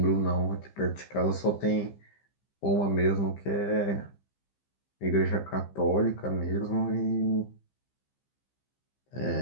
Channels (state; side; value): late; right; 15 ms